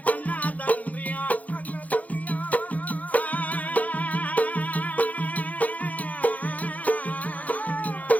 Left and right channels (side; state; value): right; late; 0.075 ms